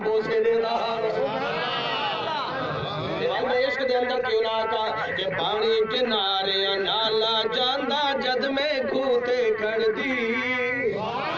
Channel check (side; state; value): both; identical; correlation 1.00